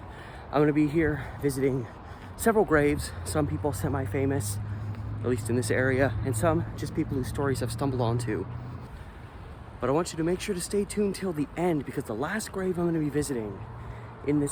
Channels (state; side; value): identical; both; correlation 1.00